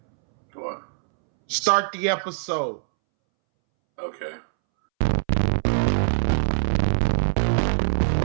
What? Start the episode. Okay.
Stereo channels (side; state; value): left; silent; 63 dB below the other